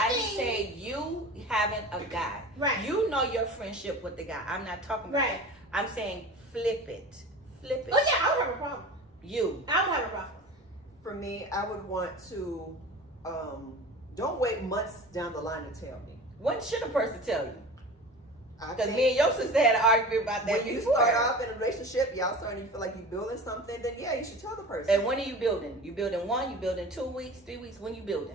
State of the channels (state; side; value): normal; both; correlation 0.36